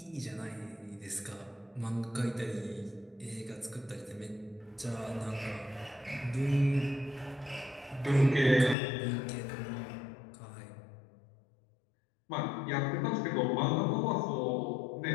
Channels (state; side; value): drops out; right; at 8.8 s